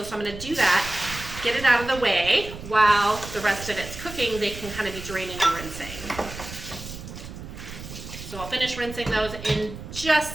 So I'm gonna do that, get it out of the way while the rest of it's cooking. They can kind of be draining and rinsing. So I'll finish rinsing those in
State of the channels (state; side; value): noise; right; rumble, 12 dB below the sound